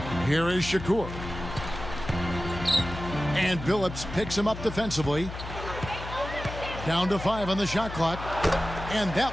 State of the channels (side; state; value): left; noise; hum, 10 dB below the sound